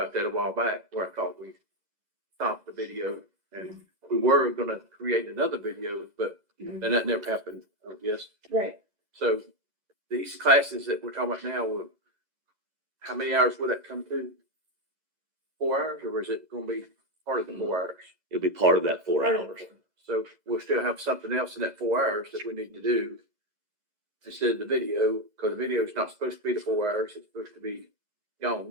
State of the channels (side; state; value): left; late; 2.0 ms